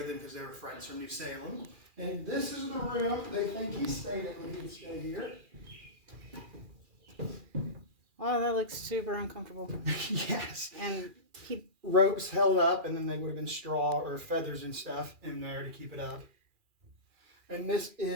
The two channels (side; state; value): left; late; 2.4 ms